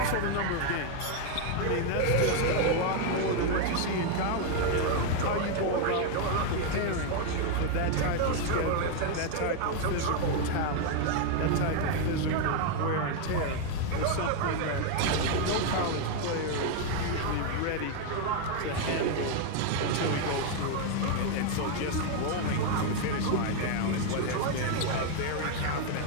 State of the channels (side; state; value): both; different; correlation 0.01